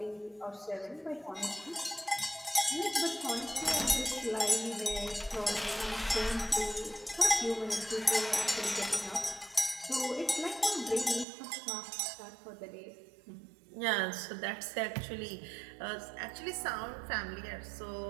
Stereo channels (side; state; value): left; drops out; at 11.2 s